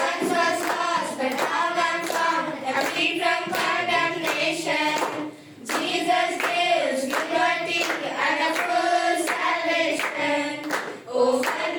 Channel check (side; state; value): both; identical; correlation 1.00